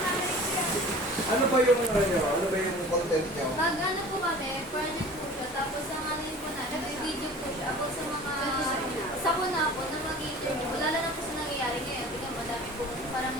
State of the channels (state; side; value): normal; both; correlation 0.42